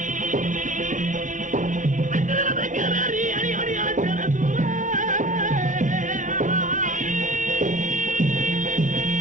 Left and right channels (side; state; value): left; late; 0.37 ms